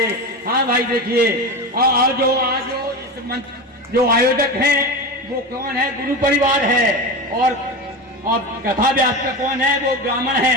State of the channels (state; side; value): normal; both; correlation 0.23